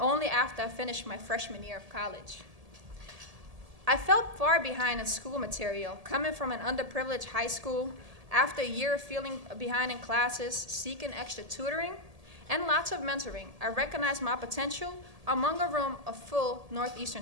after I finished my freshman year of college. I felt far behind in school material, coming from an underprivileged high school, after a year of feeling behind in classes, seeking extra tutoring, and lots of mentoring. I recognized my potential among a room of full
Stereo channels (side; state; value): left; late; 1.7 ms